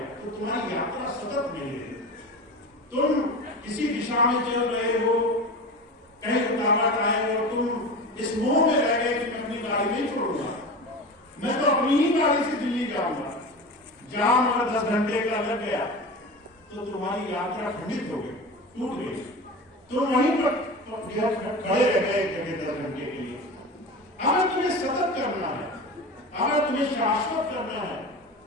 तो तुम्हारी यात्रा सतत नहीं है। तुम किसी दिशा में चल रहे हो, कहीं रुकावट आए और तुम इस मोह में रह गए कि मैं अपनी गाड़ी नहीं छोड़ूंगा, मैं तो अपनी ही गाड़ी से दिल्ली जाऊंगा। जाम अगर 10 घंटे का लग गया तो तुम्हारी यात्रा खंडित हो गई, टूट गई। तुम वहीं पर खड़े रह गए जगह 10 घंटे के लिए। अगर तुम्हें सतत करना है, अगर तुम्हें शाश्वत करना है,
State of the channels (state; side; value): normal; both; correlation 0.30